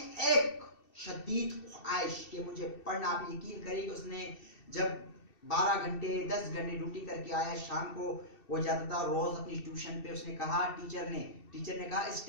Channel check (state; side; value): late; right; 2.7 ms